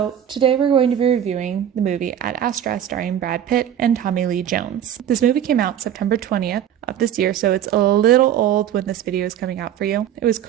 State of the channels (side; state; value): left; quieter; 10.2 dB